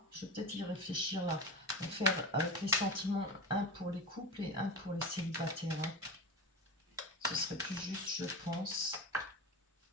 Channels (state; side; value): normal; both; correlation 0.25